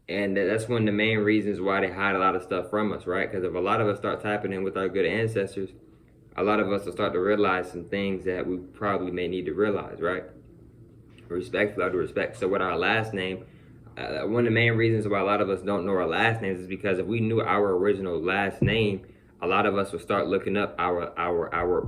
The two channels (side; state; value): both; identical; correlation 1.00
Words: And that's one of the main reasons why they hide a lot of stuff from us, right? Because if a lot of us start tapping in with our good ancestors, a lot of us will start to realize some things that we probably may need to realize, right? Respectfully, out of respect. So with our last name, one of the main reasons why a lot of us don't know our last names is because if we knew our original last name, a lot of us will start looking up our